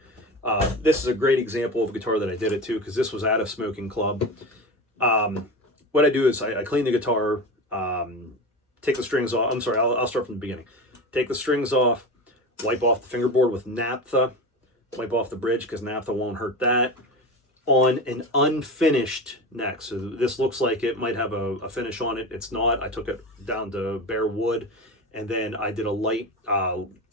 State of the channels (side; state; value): both; normal; correlation 0.26